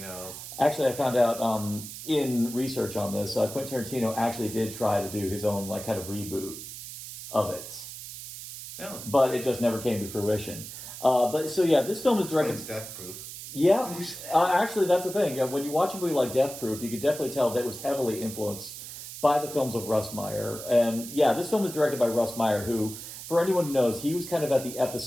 Actually, I found out in research on this, Quentin Tarantino actually did try to do his own like kind of reboot of it. Oh. But it just never came to fruition. But so yeah, this film is directed. It's Death Proof. Yeah, actually, that's the thing. When you watch a movie like Death Proof, you could definitely tell that it was heavily influenced by the films of Russ Meyer. And yeah, this film is directed by Russ Meyer, who, for anyone who knows, he was kind of at the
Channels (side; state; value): right; noise; hiss, 11 dB below the sound